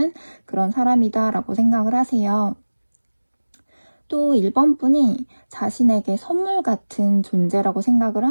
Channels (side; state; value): both; inverted; correlation -1.00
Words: 그런 사람이다라고 생각을 하세요. 또 1번 분이 자신에게 선물 같은 존재라고 생각을